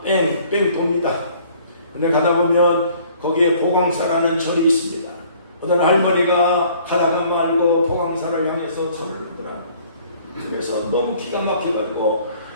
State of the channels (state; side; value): inverted; both; correlation -0.56